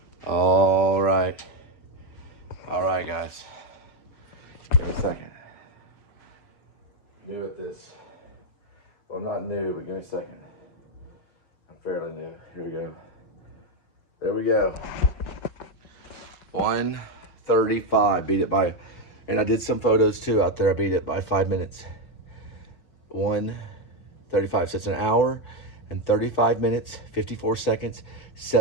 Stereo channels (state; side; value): late; right; 6.0 ms